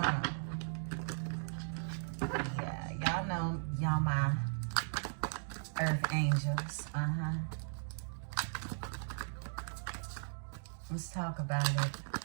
Yeah, y'all know y'all my earth angels. Let's talk about it.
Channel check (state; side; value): silent; left; digital silence